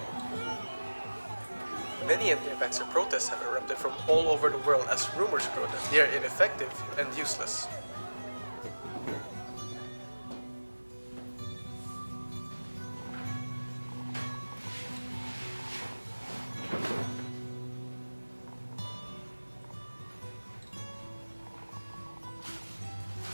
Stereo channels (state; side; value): inverted; both; correlation -1.00